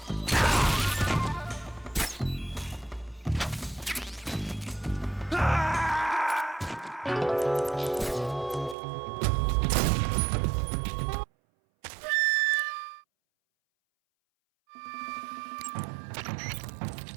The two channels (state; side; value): drops out; left; at 8.8 s